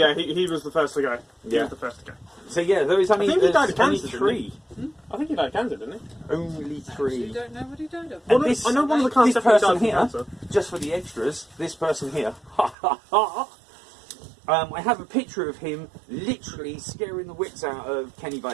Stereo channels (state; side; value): drops out; left; at 12.8 s